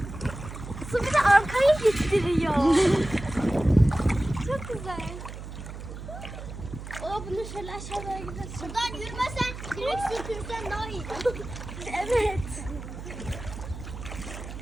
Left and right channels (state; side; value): noise; right; hum, 10 dB below the sound